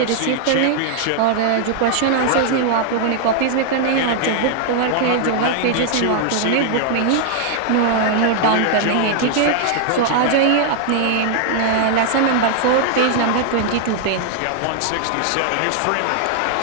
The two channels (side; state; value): both; different; correlation 0.00